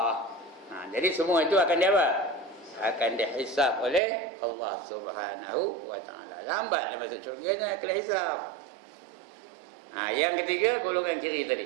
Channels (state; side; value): drops out; left; at 4.0 s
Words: Jadi semua itu akan dia apa? Akan dihisab oleh Allah Subhanahu wa taala. Lambat dia masuk syurga, kena hisab. Yang ketiga golongan kiri